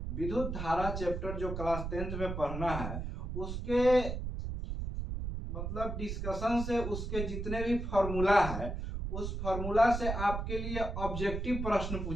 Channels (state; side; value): noise; right; rumble, 4 dB below the sound